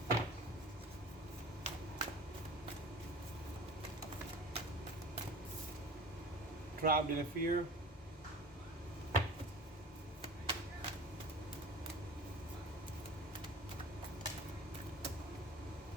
Trapped in a fear,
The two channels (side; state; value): both; normal; correlation 0.39